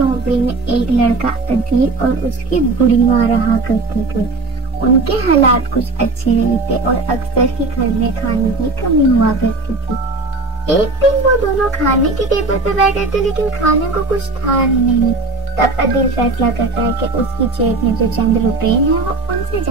में एक लड़का अदील और उसकी बुढ़ी माँ रहा करते थे। उनके हालात कुछ अच्छे नहीं थे और अक्सर ही घर में खाने की कमी हुआ करती थी। एक दिन वो दोनों खाने के टेबल पे बैठे थे लेकिन खाने को कुछ था ही नहीं। तब अदील फैसला करता है कि उसकी जेब में जो चंद रुपए हैं वो उनसे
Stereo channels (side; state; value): left; quieter; 3.2 dB